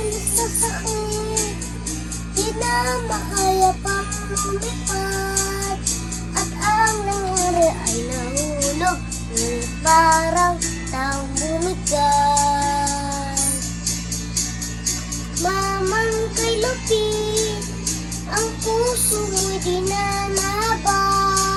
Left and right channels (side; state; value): both; identical; correlation 1.00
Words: sa sakit, di na makaya pang lumipad. At ang nangyari ay nahulog, parang taong bumigay. Mamang kay lupit, ang puso mo'y di na